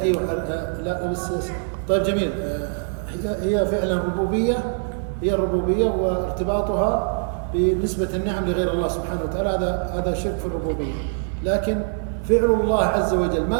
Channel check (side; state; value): left; silent; digital silence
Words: أيوة لا بس طيب جميل. هي فعلا ربوبية، هي الربوبية وارتباطها بنسبة النعم لغير الله سبحانه وتعالى هذا شرك في الربوبية. لكن فعل الله عز وجل